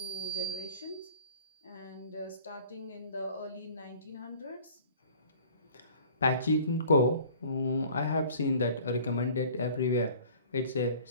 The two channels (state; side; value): inverted; both; correlation -0.48